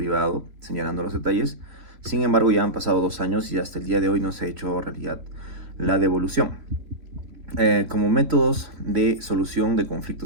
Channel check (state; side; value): late; left; 3.1 ms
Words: señalando los detalles. Sin embargo, ya han pasado 2 años y hasta el día de hoy no se ha hecho realidad la devolución. Como métodos de solución de